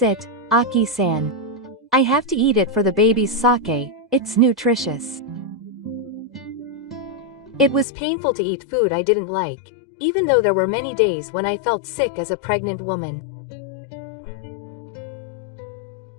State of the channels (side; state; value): right; drops out; at 7.9 s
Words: it, Aki-san. I have to eat it for the baby's sake, it's nutritious. It was painful to eat food I didn't like, even though there were many days when I felt sick as a pregnant woman.